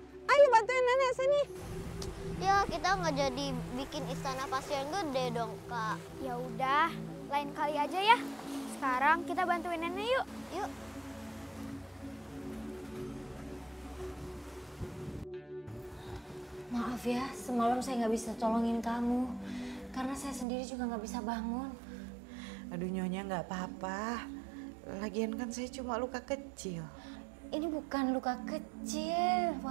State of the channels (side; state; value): left; drops out; at 20.5 s